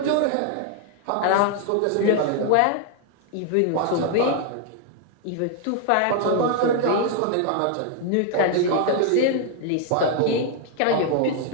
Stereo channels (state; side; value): different; both; correlation 0.00